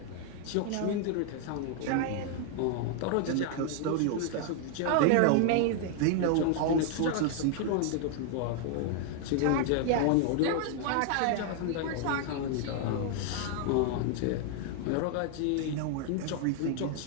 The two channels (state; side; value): different; both; correlation 0.00